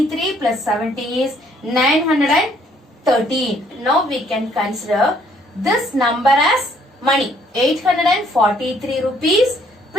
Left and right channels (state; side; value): normal; both; correlation 0.64